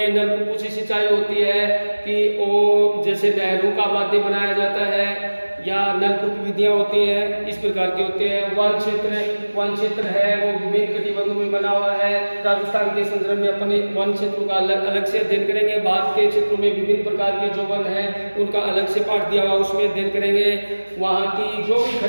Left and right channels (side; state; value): both; inverted; correlation -1.00